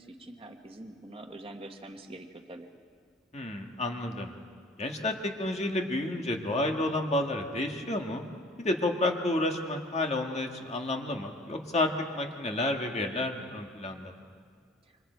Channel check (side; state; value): both; normal; correlation 0.48